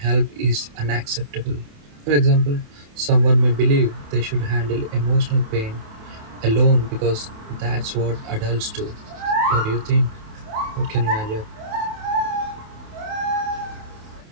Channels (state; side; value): late; left; 28 ms